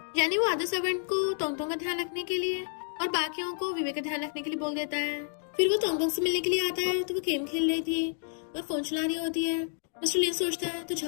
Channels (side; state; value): right; silent; digital silence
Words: यानी वो आधे सर्वेंट को तोंगतोंग का ध्यान रखने के लिए और बाकियों को विवेक का ध्यान रखने के लिए बोल देता है। फिर वो तोंगतोंग से मिलने के लिए आता है तो वो गेम खेल रही थी और फोन चला रही होती है। मिस्टर लिन सोचता है तो